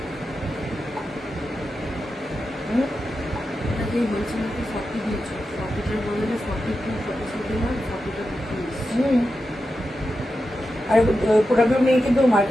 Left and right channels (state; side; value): normal; both; correlation 0.90